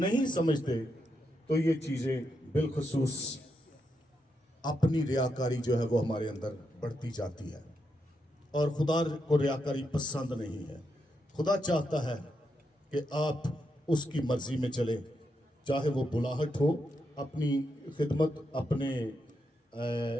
समझते तो ये चीज़ें बिलखुसूस अपनी रियाकारी जो है वो हमारे अंदर बढ़ती जाती है, और खुदा को रियाकारी पसंद नहीं है। खुदा चाहता है कि आप उसकी मर्जी में चले, चाहे वो बुलाहट हो, अपनी खिदमत, अपने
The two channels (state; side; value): normal; both; correlation 0.83